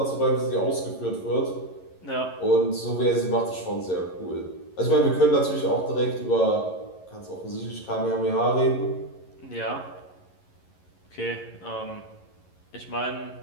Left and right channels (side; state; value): right; late; 11 ms